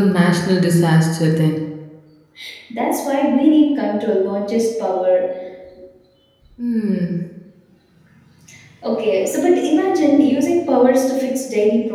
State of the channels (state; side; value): identical; both; correlation 1.00